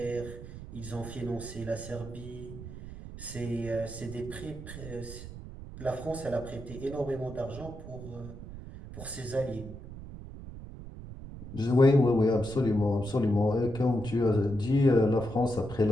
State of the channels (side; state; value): right; noise; rumble, 12 dB below the sound